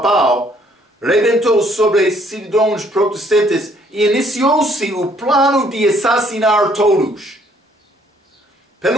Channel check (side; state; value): both; normal; correlation 0.64